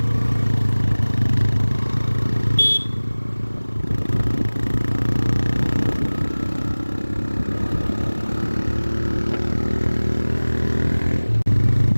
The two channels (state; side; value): inverted; both; correlation -1.00